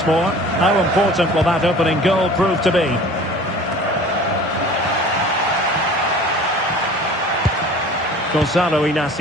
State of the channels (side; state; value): both; normal; correlation 0.44